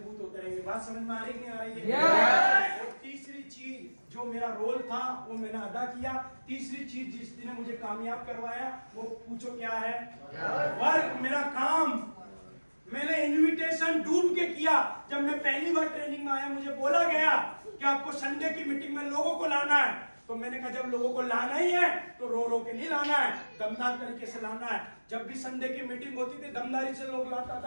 होते रहेंगे। बात समझ में आ रही नहीं आ रही है? और तीसरी चीज जो मेरा रोल था वो मैंने अदा किया। तीसरी चीज जिसने मुझे कामयाब करवाया वो पूछो क्या है? वर्क, मेरा काम। मैंने इनविटेशन डूब के किया। जब मैं पहली बार ट्रेनिंग में आया, मुझे बोला गया कि आपको संडे की मीटिंग में लोगों को लाना है। तो मैंने कहा जब लोगों को लाना ही है तो रो रो के नहीं लाना है, दमदार तरीके से लाना है। जब भी संडे की मीटिंग होती थी दमदारी से लोग लाता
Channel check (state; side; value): inverted; both; correlation -1.00